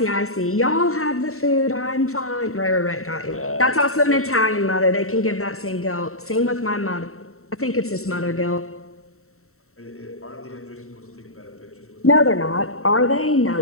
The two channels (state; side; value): late; right; 0.63 ms